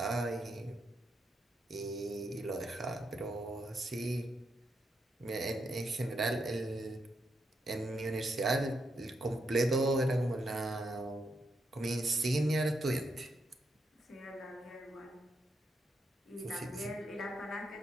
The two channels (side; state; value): both; normal; correlation 0.81